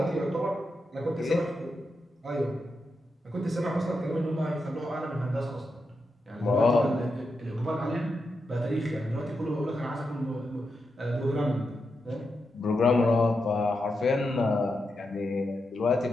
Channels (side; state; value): both; normal; correlation 0.86